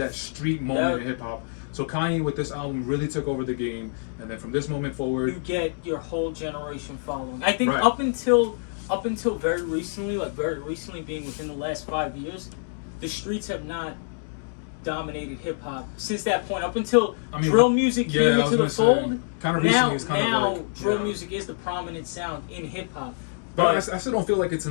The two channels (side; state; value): right; silent; digital silence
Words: street moment in hip hop. So Kanye with this album really took over the game, and then from this moment forward, you get your whole generation following. I think up until very recently being within the last 5 years, the streets have not dominated hip hop since that point. Up until drill music came into the fold, now drill music is the prominent sound in hip hop. But I still don't feel like it's